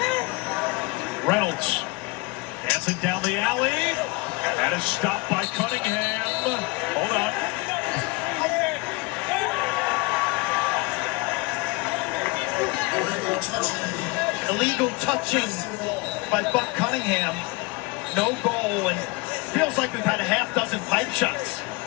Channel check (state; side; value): quieter; right; 24.7 dB